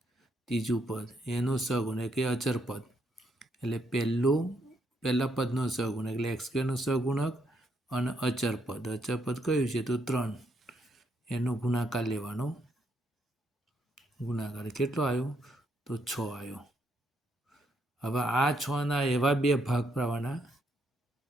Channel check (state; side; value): normal; both; correlation 0.75